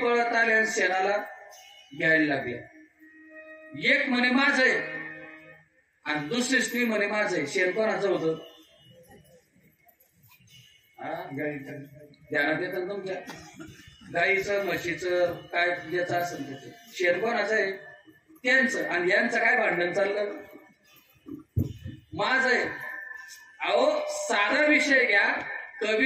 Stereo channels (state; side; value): identical; both; correlation 1.00